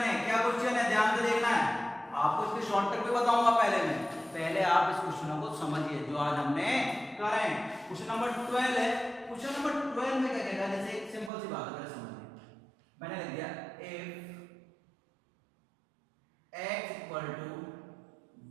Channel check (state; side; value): drops out; left; at 11.3 s